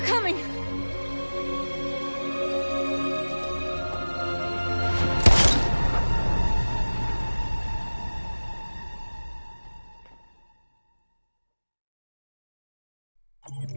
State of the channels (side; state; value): both; inverted; correlation -1.00